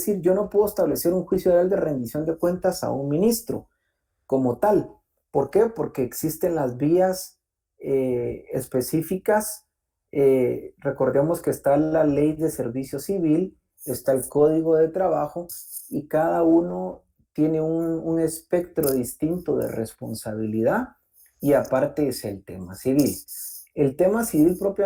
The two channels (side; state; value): both; identical; correlation 1.00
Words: yo no puedo establecer un juicio oral de rendición de cuentas a un ministro como tal. ¿Por qué? Porque existen las vías específicas. Recordemos que está la ley de servicio civil, está el código de trabajo y cada uno tiene un espectro distinto de responsabilidad y aparte es el tema civil. El tema civil